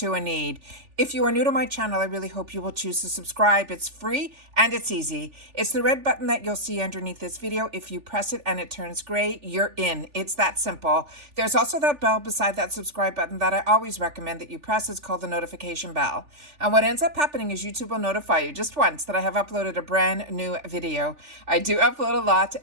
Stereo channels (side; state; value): left; late; 3.4 ms